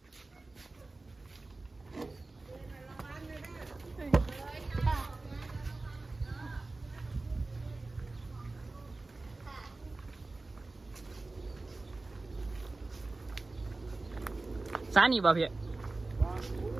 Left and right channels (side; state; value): left; quieter; 3.3 dB